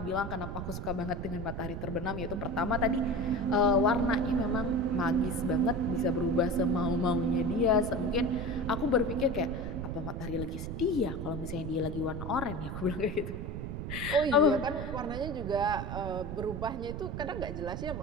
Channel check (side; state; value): right; noise; rumble, 5 dB below the sound